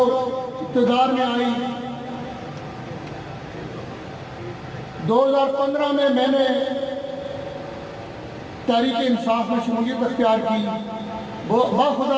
इक़्तिदार में आई, 2015 में मैंने तहरीक इंसाफ में शमूलियत अख्तियार की। वो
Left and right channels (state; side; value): identical; both; correlation 1.00